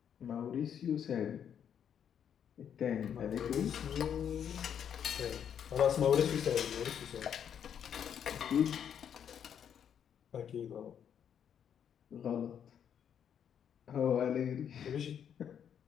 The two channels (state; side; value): quieter; right; 8.6 dB